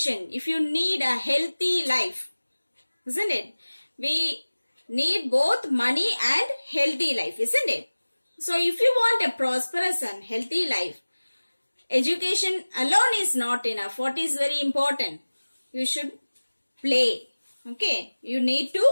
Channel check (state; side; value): inverted; both; correlation -1.00